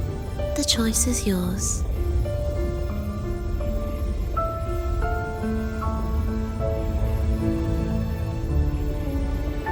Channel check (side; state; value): both; identical; correlation 1.00